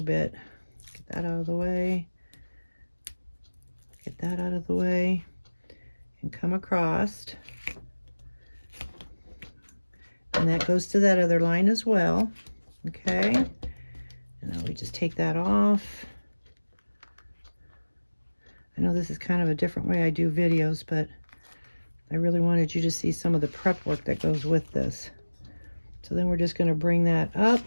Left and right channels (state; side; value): inverted; both; correlation -1.00